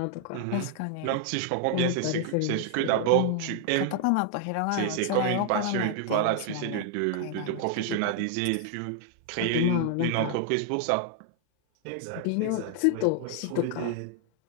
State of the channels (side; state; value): both; different; correlation 0.00